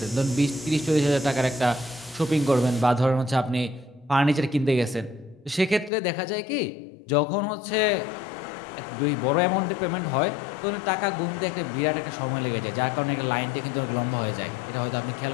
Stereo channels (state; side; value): drops out; right; at 5.9 s